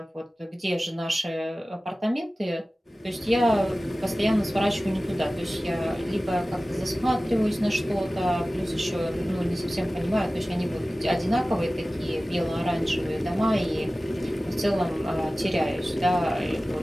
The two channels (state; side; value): normal; both; correlation 0.97